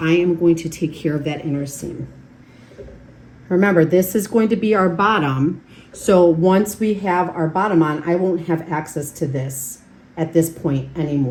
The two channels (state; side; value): identical; both; correlation 1.00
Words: am going to take care of that inner seam. Remember, this is going to be our bottom. So once we have our bottom on, I won't have access to this at this point